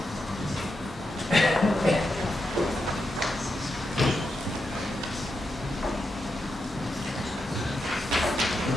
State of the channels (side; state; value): both; normal; correlation 0.86